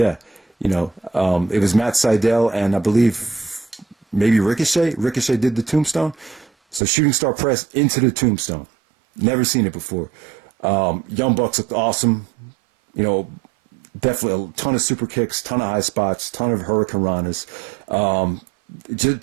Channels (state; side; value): drops out; left; at 6.8 s